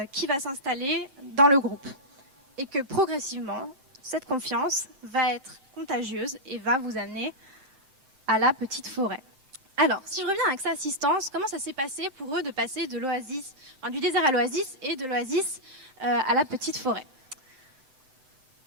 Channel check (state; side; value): late; left; 7.7 ms